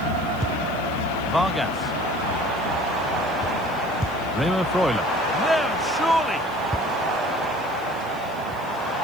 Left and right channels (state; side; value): noise; right; hiss, 23 dB below the sound